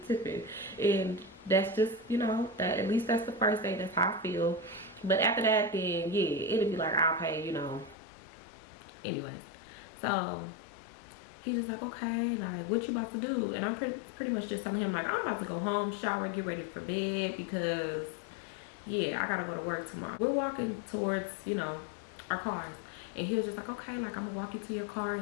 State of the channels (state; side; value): drops out; right; at 8.0 s